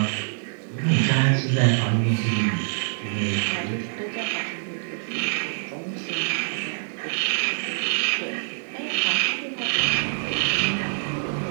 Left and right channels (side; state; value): left; silent; digital silence